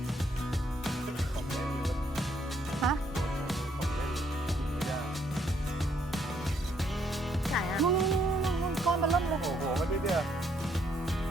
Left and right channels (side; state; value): both; normal; correlation 0.70